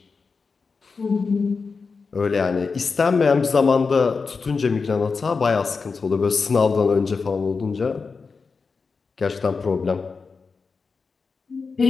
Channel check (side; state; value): right; quieter; 4.8 dB